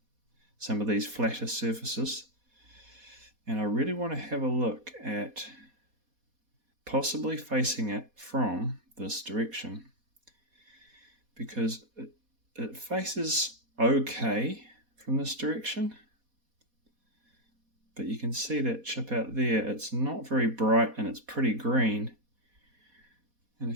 some of these flatter surfaces. And I really want to have a look at possibly facing it from this direction, because it faces okay from this direction, but you can see that chip out there. It's not very bright and it's pretty green. And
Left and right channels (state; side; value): late; left; 4.2 ms